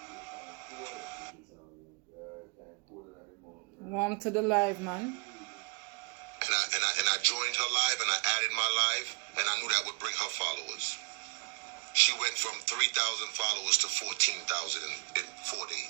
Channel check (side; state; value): left; quieter; 33.0 dB